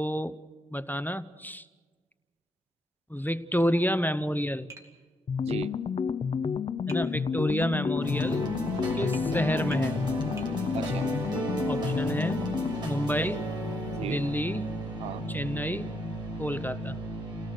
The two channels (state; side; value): normal; both; correlation 0.77